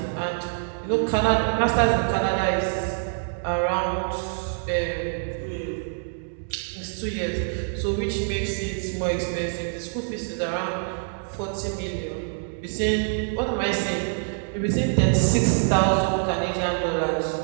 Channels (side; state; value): left; silent; 61 dB below the other